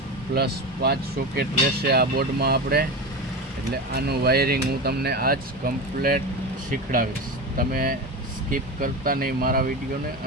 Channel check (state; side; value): normal; both; correlation 0.23